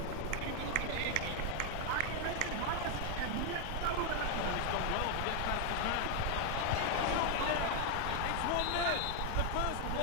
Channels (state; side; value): different; both; correlation 0.00